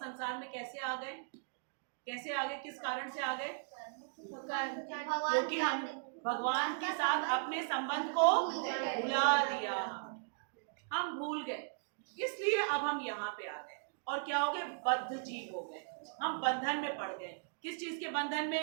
में कैसे आ गए, कैसे आ गए, किस कारण से आ गए, क्योंकि हम भगवान के साथ अपने संबंध को भुला दिया, हम भूल गए, इसलिए अब हम यहाँ पे आ गए और क्या हो गए, बद्ध जीव हो गए, हम बंधन में पड़ गए। किस चीज के बंधन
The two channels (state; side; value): silent; left; digital silence